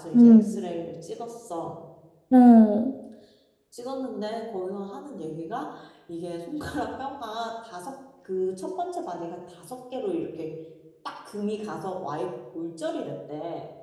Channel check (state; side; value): identical; both; correlation 1.00